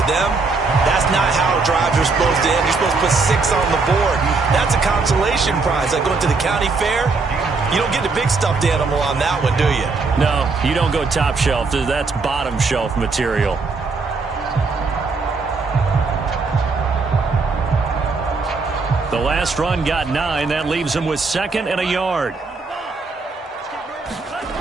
them, that's not how drives are supposed to end. You're supposed to put 6 on the board. That's a consolation prize. Like going to the county fair, you don't get the big stuffed animal on that one, do you? No, you don't go top shelf. That's bottom shelf material. The last run got 9. That leaves him with 2nd and a yard.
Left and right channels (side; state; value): left; quieter; 4.1 dB